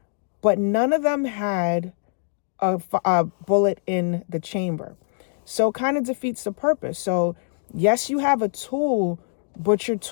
but none of them had a bullet in the chamber. So it kind of defeats the purpose. So yes, you have a tool, but your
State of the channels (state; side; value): silent; right; digital silence